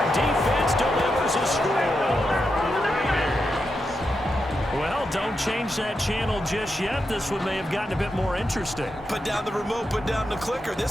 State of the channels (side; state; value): both; normal; correlation 0.86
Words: defense delivers a score. Well, don't change that channel just yet. This one may have gotten a bit more interesting. Put down the remote, put down the clicker.